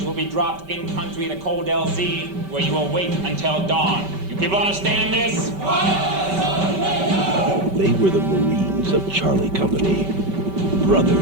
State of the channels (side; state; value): left; late; 5.2 ms